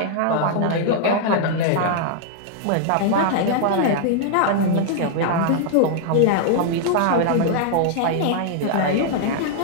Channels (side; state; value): both; different; correlation -0.01